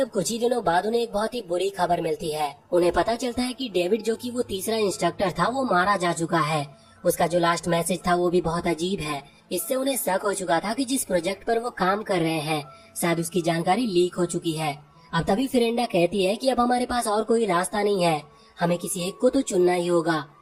कुछ ही दिनों बाद उन्हें एक बहुत ही बुरी खबर मिलती है। उन्हें पता चलता है कि डेविड, जो कि वो तीसरा इंस्ट्रक्टर था, वो मारा जा चुका है। उसका जो लास्ट मैसेज था वो भी बहुत अजीब है। इससे उन्हें शक हो चुका था कि जिस प्रोजेक्ट पर वो काम कर रहे हैं, शायद उसकी जानकारी लीक हो चुकी है। अब तभी फेरेंडा कहती है कि अब हमारे पास और कोई रास्ता नहीं है, हमें किसी एक को तो चुनना ही होगा,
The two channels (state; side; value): identical; both; correlation 1.00